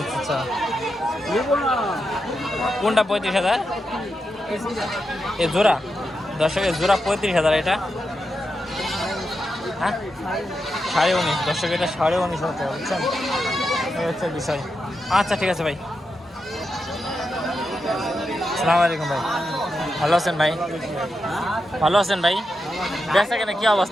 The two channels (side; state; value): both; normal; correlation 0.87